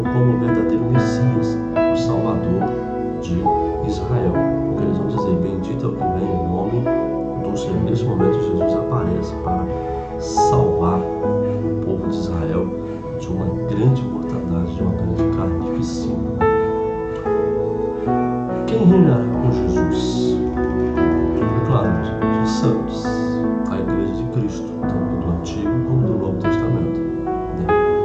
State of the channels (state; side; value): identical; both; correlation 1.00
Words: como o verdadeiro Messias, o Salvador de Israel. Porque eles vão dizer: bendito é o que vem em nome do Senhor. Nesse momento Jesus aparece para salvar o povo de Israel de uma grande mortandade, de uma grande carnificina. Quem reinará com Jesus? É claro, os santos, a igreja de Cristo, tanto do Antigo como do Novo Testamento.